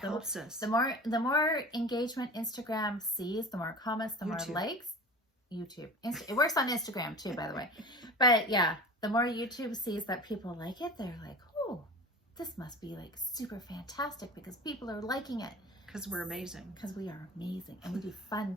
us. The more engagement Instagram sees, the more comments, the more likes. YouTube. It works on Instagram too, by the way. But yeah, the more YouTube sees that people like it, they're like, oh, this must be like super fantastic because people are liking it. Because we're amazing. Because we are amazing. And we do fun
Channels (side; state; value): both; normal; correlation 0.36